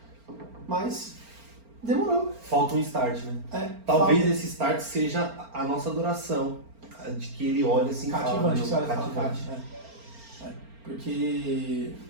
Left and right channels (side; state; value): left; late; 4.4 ms